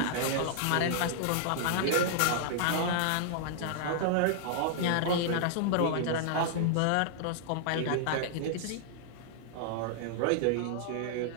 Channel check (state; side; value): different; both; correlation -0.01